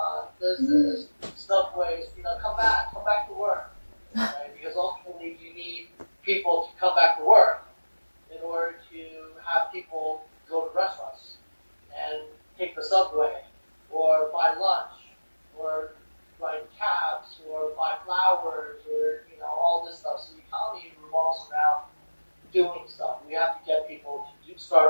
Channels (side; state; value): both; inverted; correlation -1.00